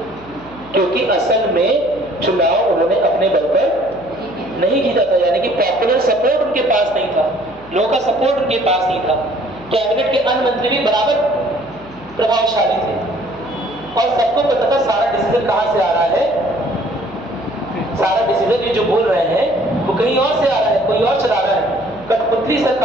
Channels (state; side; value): noise; left; hum, 22 dB below the sound